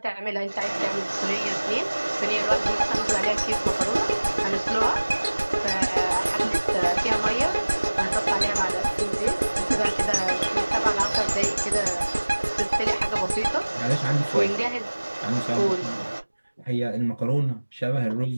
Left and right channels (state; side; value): inverted; both; correlation -1.00